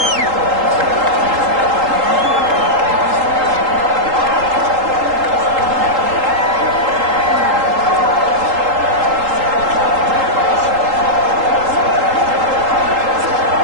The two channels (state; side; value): late; left; 3.8 ms